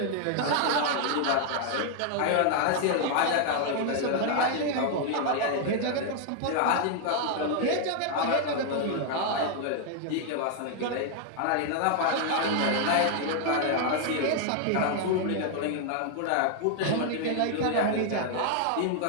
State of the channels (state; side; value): different; both; correlation 0.00